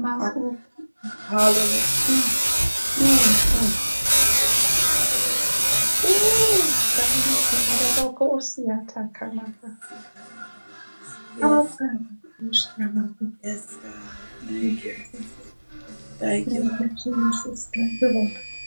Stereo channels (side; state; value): both; inverted; correlation -1.00